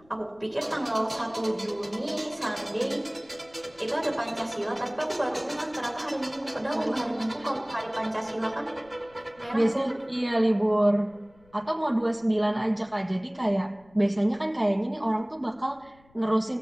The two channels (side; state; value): left; noise; rumble, 29 dB below the sound